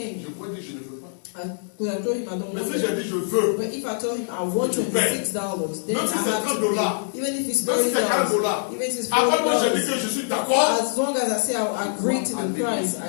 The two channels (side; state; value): right; silent; digital silence